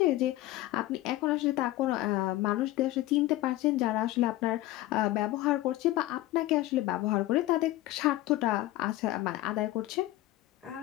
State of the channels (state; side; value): quieter; right; 16.6 dB